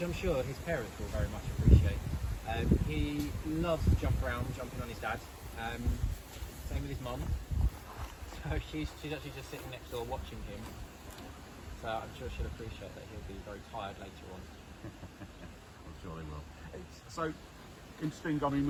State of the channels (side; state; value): both; identical; correlation 1.00